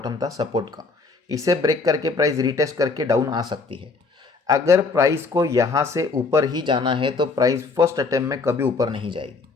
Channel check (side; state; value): right; quieter; 4.2 dB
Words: था सपोर्ट का, इसे ब्रेक करके प्राइस रिटेस्ट करके डाउन आ सकती है। अगर प्राइस को यहाँ से ऊपर ही जाना है तो प्राइस फर्स्ट अटेम्प्ट में कभी ऊपर नहीं जाएगी।